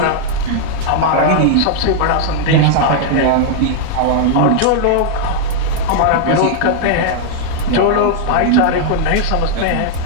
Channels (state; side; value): different; both; correlation -0.01